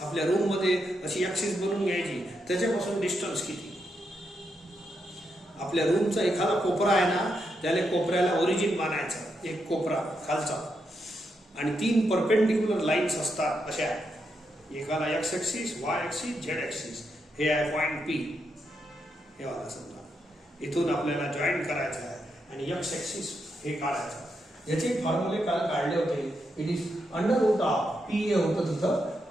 आपल्या रूम मध्ये अशी ऍक्सिस बनवून घ्यायची, त्याच्यापासून डिस्टन्स किती. आपल्या रूमचा एखादा कोपरा आहे ना, त्याला कोपऱ्याला ओरिजिन मानायचं, एक कोपरा खालचा, आणि 3 परपेंडिक्युलर लाईन्स असतात अशा, एकाला x axis, Y axis, Z axis. हे आहे पॉइंट P. हे वाला समजा इथून आपल्याला जॉईन करायचं आहे आणि एक्स ऍक्सिस हे काढायचं. याचे फॉर्म्युले काल काढले होते. It is under root of P हे होतं तिथं,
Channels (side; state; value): both; normal; correlation 0.82